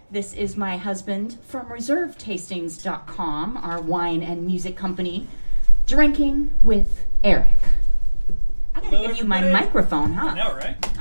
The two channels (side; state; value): both; inverted; correlation -1.00